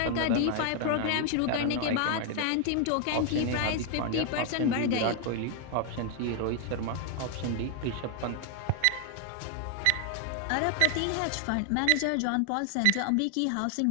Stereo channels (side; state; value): both; different; correlation 0.00